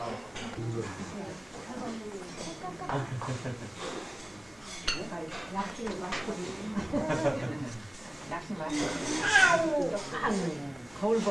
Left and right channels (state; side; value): noise; right; hum, 29 dB below the sound